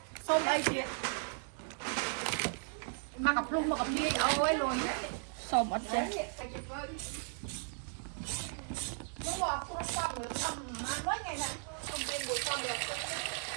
xong ai chuyện mà gặp luôn mà gặp đi ôi luôn đấy xong ở trên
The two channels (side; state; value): left; silent; 54 dB below the other